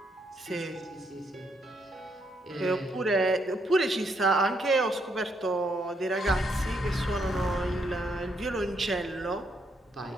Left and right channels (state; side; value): normal; both; correlation 0.75